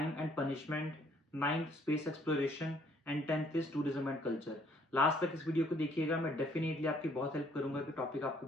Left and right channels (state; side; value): normal; both; correlation 0.63